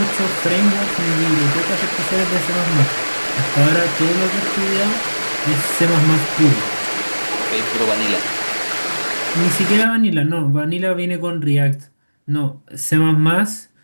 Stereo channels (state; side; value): inverted; both; correlation -1.00